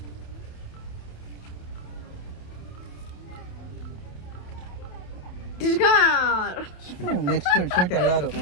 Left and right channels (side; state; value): right; late; 28 ms